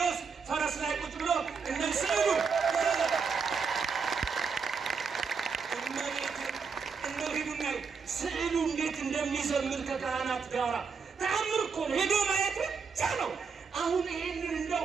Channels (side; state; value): left; quieter; 5.5 dB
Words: ፈረስ ላይ ቁጭ ብሎ እነዚህ እንደው ሂዱና ስዕሉ እንዴት እንደሚዘምር ከካህናት ጋራ ተአምር እኮ ነው። ሄዶ ማየት ብቻ ነው። አሁን ይሄንን